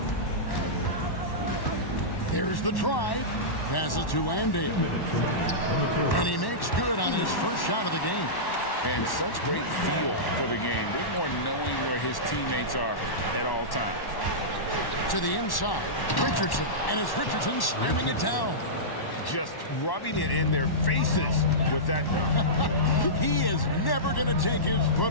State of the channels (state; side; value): late; right; 1.1 ms